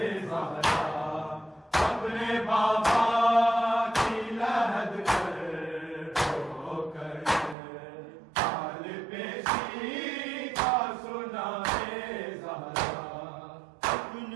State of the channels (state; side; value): drops out; left; at 7.6 s